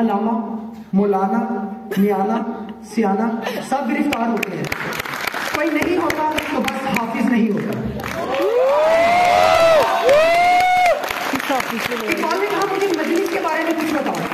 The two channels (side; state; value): both; identical; correlation 1.00